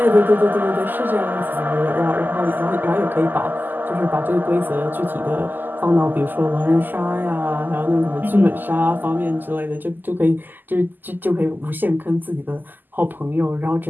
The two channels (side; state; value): left; late; 0.088 ms